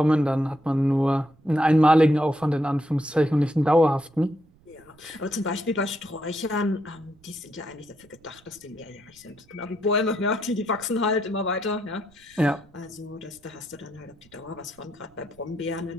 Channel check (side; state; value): right; noise; rumble, 29 dB below the sound